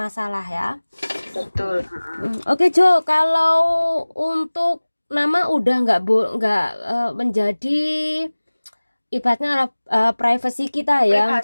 ya. Betul. Oke Jo, kalau untuk nama udah nggak menjadi ibaratnya privasi kita ya. Privasi,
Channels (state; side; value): inverted; both; correlation -1.00